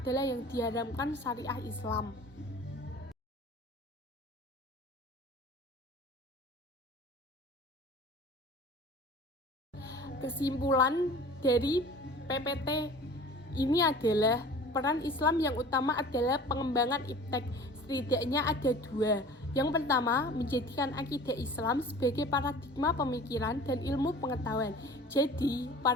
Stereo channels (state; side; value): normal; both; correlation 0.43